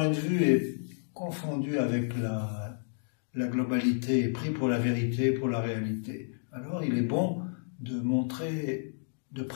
de vue est confondu avec la globalité, pris pour la vérité, pour la réalité, alors il est bon de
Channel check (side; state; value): right; silent; digital silence